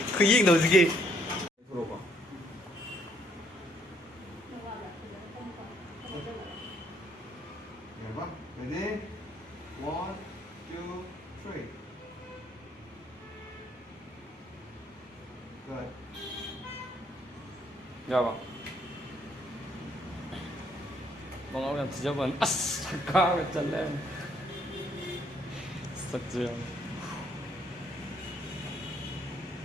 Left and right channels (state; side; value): normal; both; correlation 0.69